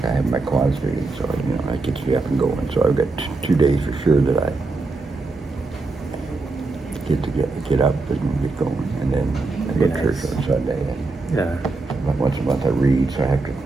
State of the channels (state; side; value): quieter; left; 3.5 dB